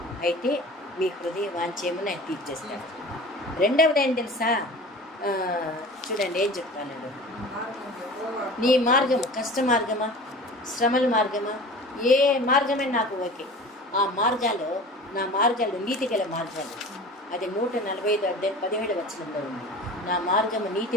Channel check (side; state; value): both; normal; correlation 0.39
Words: అయితే మీ హృదయ వాంఛేమని ఆయన తీర్చేస్తాడు. రెండవది ఏం తెలుసా? చూడండి ఏం చెప్తాను. నీ మార్గము కష్ట మార్గమా, శ్రమల మార్గమా, ఏ మార్గమే నాకు ఓకే. ఆ మార్గాలు నా మార్గాలు నీతిగల మార్గాలు. అది 145 అధ్యాయం 17 వచనంలో ఉంది. నా మార్గము